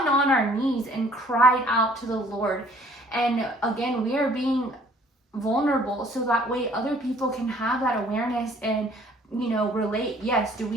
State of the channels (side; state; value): both; normal; correlation 0.57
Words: on our knees and cried out to the Lord. And again, we are being vulnerable so that way other people can have that awareness and, you know, relate. Yes, do